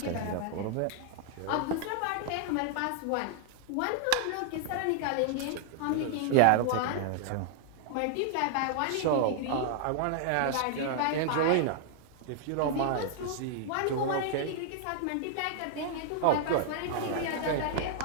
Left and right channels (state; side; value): different; both; correlation 0.00